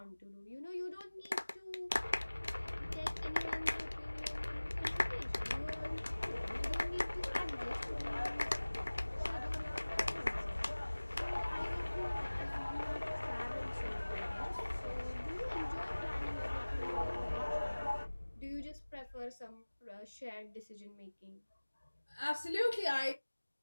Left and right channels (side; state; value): both; inverted; correlation -1.00